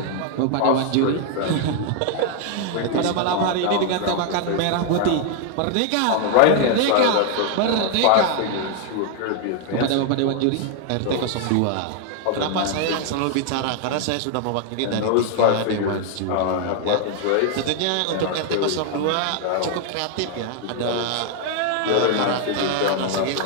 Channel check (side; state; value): both; different; correlation 0.00